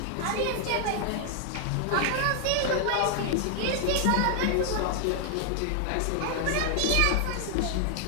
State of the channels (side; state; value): both; different; correlation 0.00